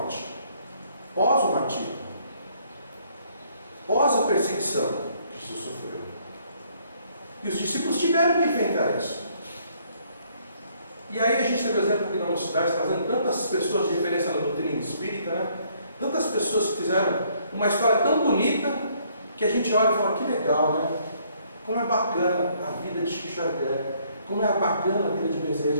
pós o martírio, pós a perseguição que Jesus sofreu. E os discípulos tiveram que enfrentar isso. E aí a gente teve o exemplo aqui na mocidade, trazendo tantas pessoas de referência na doutrina espírita, né? Tantas pessoas que fizeram uma história tão bonita, que a gente olha e fala, que legal, né? Como é bacana a vida de Chico Xavier, como é bacana a vida de Bezerra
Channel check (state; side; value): inverted; both; correlation -0.65